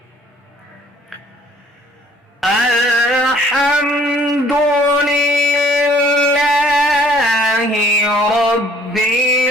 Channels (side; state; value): both; normal; correlation 0.58